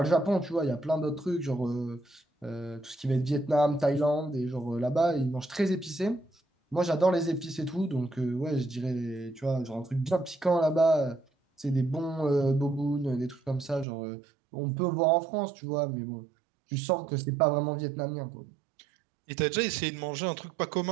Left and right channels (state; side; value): drops out; left; at 13.9 s